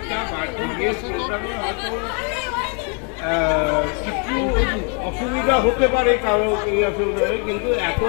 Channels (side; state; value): right; quieter; 37.6 dB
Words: বার্থডে প্রোগ্রামে হয়তো কিছু অসুবিধা হতে পারে কারো অসুবিধা হয়, কিন্তু এত